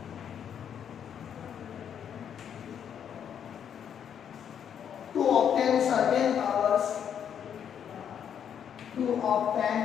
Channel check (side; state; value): right; quieter; 8.5 dB